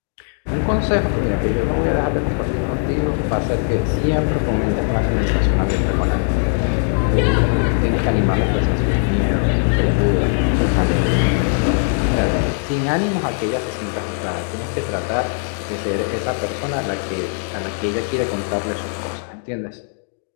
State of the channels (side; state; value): right; silent; 66 dB below the other